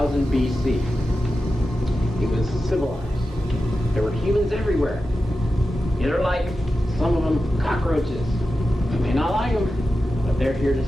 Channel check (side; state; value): both; normal; correlation 0.92